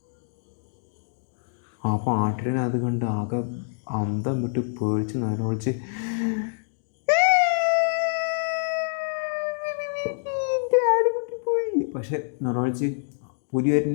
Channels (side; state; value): right; silent; digital silence